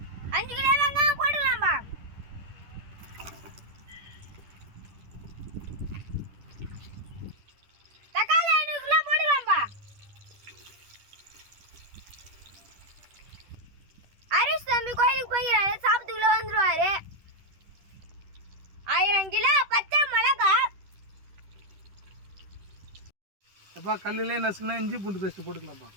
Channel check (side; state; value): left; late; 10 ms